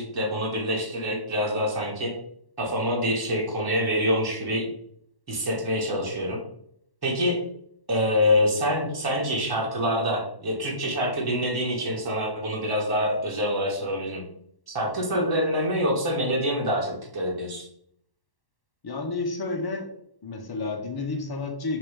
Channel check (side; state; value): right; late; 1.1 ms